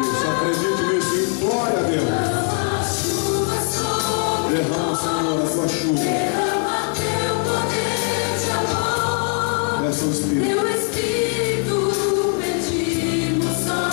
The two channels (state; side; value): quieter; right; 35.1 dB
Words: isso. Acredite nisso e glória a Deus. Derrama chuva sobre Derrama, Senhor, a tua chuva. derrama teu poder de amor, Peça o Espírito. teu Espírito pedimos, ó